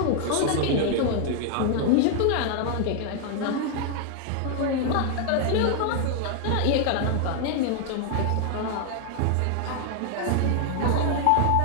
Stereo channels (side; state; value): both; different; correlation 0.00